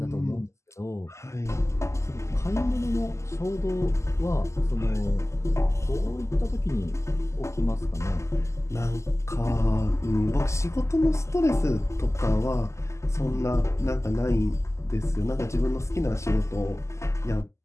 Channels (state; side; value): late; right; 0.13 ms